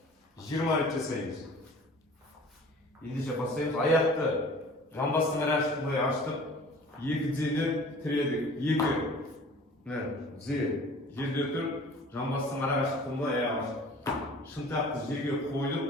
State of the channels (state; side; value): normal; both; correlation 0.46